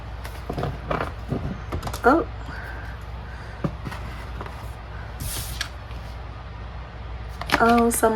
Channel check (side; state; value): both; identical; correlation 1.00